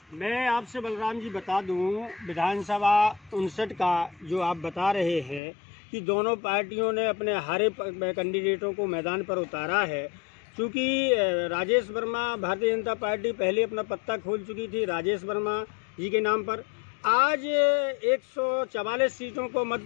मैं आपसे बलराम जी बता दूं, विधानसभा 59 का जो आप बता रहे हैं कि दोनों पार्टियों ने अपने हारे कैंडिडेटों को मैदान पर उतारा है। क्योंकि राजेश वर्मा, भारतीय जनता पार्टी पहले अपना पत्ता खोल चुकी थी राजेश वर्मा जी के नाम पर। आज 144 सीटों को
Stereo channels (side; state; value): right; drops out; at 5.4 s